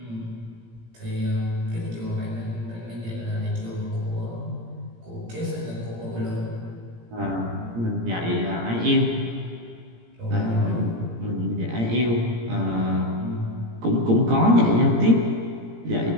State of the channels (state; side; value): late; left; 17 ms